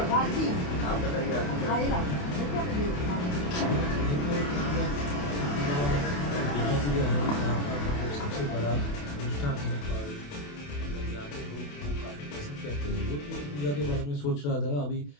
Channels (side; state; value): right; late; 28 ms